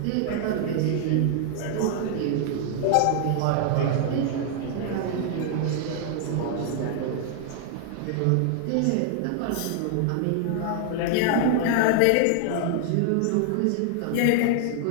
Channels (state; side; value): different; both; correlation 0.00